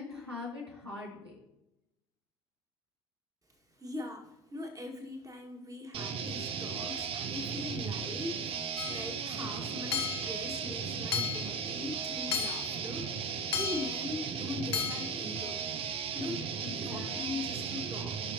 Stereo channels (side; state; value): both; normal; correlation 0.21